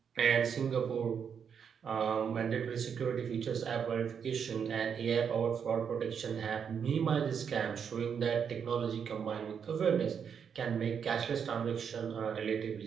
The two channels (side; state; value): left; quieter; 7.2 dB